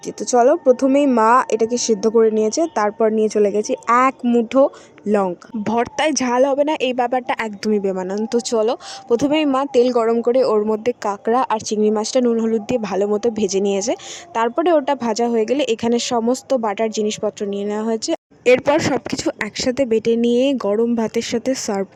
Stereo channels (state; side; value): identical; both; correlation 1.00